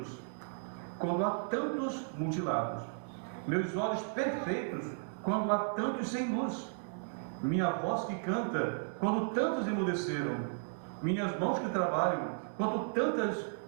quando há tantos mutilados, meus olhos perfeitos quando há tantos sem luz, minha voz que canta quando tantos emudeceram, minhas mãos que trabalham quando tantas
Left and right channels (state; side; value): silent; left; digital silence